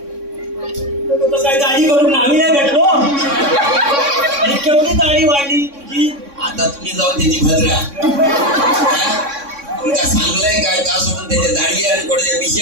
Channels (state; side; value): late; left; 3.6 ms